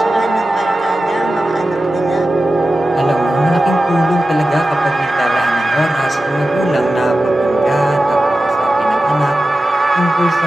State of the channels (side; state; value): both; normal; correlation 0.94